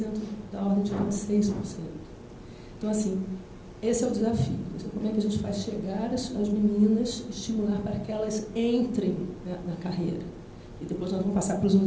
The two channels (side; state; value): both; identical; correlation 1.00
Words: da ordem de 26%. Então, assim, esse é o desafio. Como é que a gente faz chegar as meninas, estimular para que elas entrem na carreira? E depois nós vamos passar para os